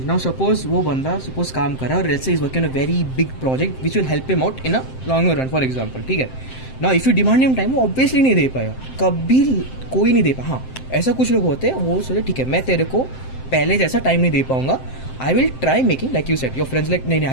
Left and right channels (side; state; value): right; late; 7.7 ms